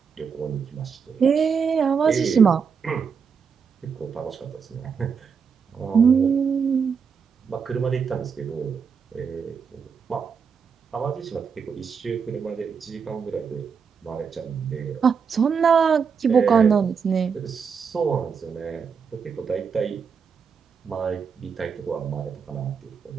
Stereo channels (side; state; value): left; quieter; 6.2 dB